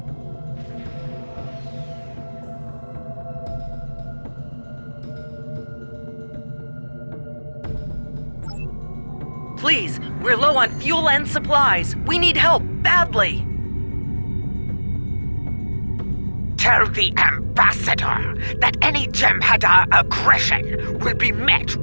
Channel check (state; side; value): inverted; both; correlation -1.00